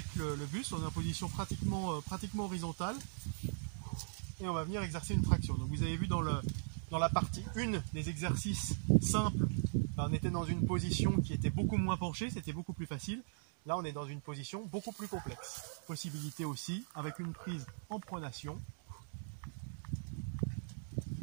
le buste. On est en position pratiquement horizontale. Et on va venir exercer une traction. Donc vous avez vu dans la partie 1 des exercices simples, on était dans une position qui était beaucoup moins penchée, c'était beaucoup plus facile. Là on est dans une position beaucoup plus complexe. Possibilité aussi avec une prise en pronation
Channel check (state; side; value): silent; left; digital silence